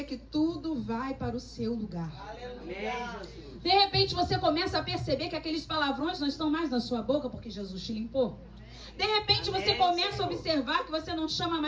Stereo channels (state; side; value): identical; both; correlation 1.00